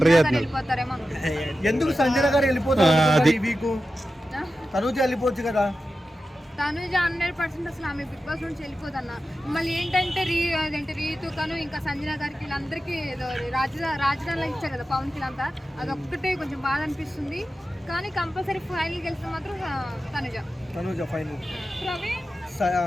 వెళ్ళిపోతారేమో. ఎందుకు సంజన గారు వెళ్ళిపోతారు ఈ వీక్? తనుజ వెళ్ళిపోవచ్చు కదా. తనుజ 100% అసలు ఆమె బిగ్ బాస్ నుంచి వెళ్ళిపోదన్న. మళ్ళీ ఏంటంటే అదేంటి రీతు కను ఇంకా సంజన గారికి వీళ్ళందరికీ ఏదో రాజధానిలో ఇచ్చారు కదా పవన్ కి అంతా, అదొక్కటే కొంచెం బాధ అనిపిస్తుంది. కానీ కంపల్సరీ ఫైనల్ గెలిస్తే మాత్రం తనుజ ఫైనల్.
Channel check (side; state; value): both; normal; correlation 0.92